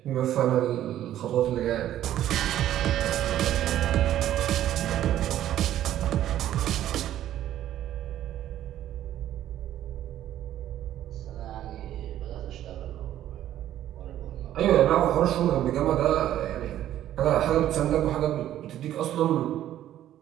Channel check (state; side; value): quieter; left; 12.2 dB